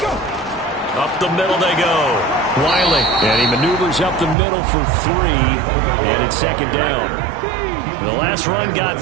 Up the middle they go. Wiley, and he maneuvers up the middle for 3, and it's 2nd down. The last run got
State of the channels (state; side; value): drops out; left; at 4.4 s